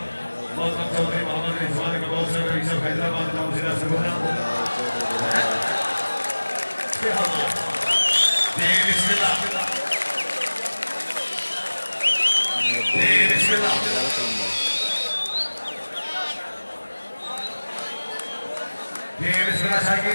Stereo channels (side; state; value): both; inverted; correlation -1.00